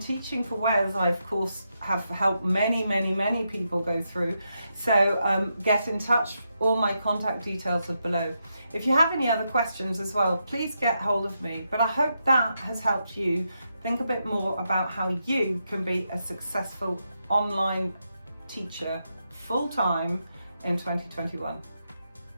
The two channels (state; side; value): inverted; both; correlation -0.83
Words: for Wales, I of course have helped many people go through. So get in touch. All my contact details are below. If you have any other questions as well, please get hold of me. But I hope that has helped you think a bit more about how you can be a successful online teacher full time in 2021.